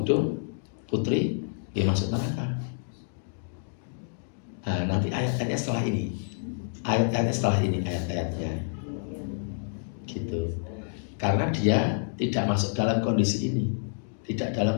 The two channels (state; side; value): silent; right; digital silence